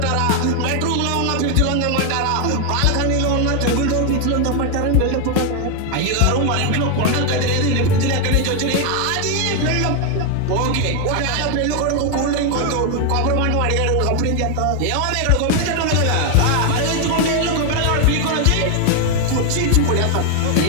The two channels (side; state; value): both; different; correlation 0.01